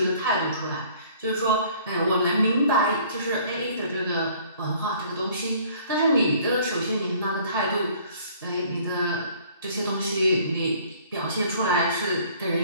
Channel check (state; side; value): inverted; both; correlation -0.55